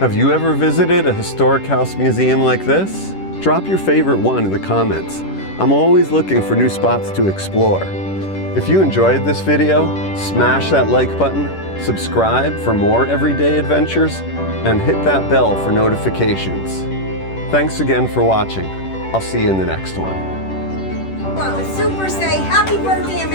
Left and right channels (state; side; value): late; right; 10 ms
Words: you ever visited a historic house museum like this? Drop your favorite one in the comments. I'm always looking for new spots to explore. If you enjoyed this video, smash that like button, subscribe for more everyday adventures, and hit that bell for notifications. Thanks again for watching. I'll see you in the next one. Well, a super say, Happy Birthday